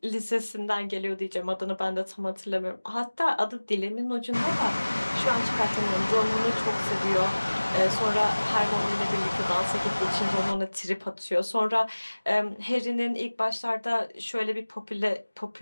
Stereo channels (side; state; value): both; inverted; correlation -1.00